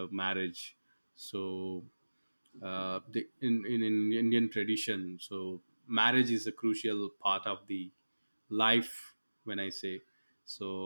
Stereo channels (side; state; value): both; inverted; correlation -1.00